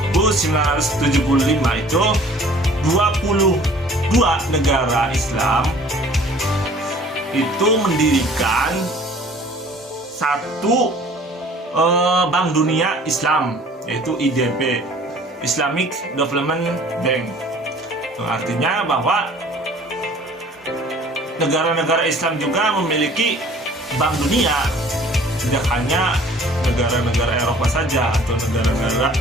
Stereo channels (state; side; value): normal; both; correlation 0.51